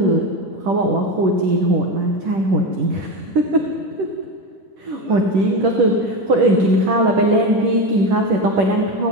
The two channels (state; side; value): late; left; 10 ms